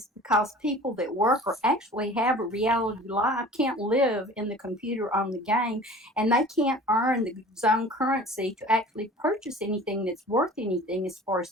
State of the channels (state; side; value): normal; both; correlation 0.44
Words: because people that work or actually have a reality life can't live in the computer on the game, and they can't earn the zone currency to actually purchase anything that's worth anything as far